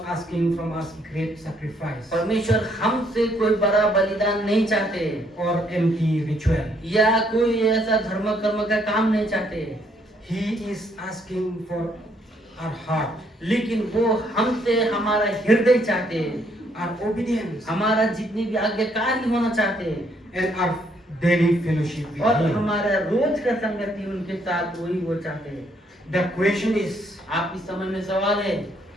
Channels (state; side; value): normal; both; correlation 0.69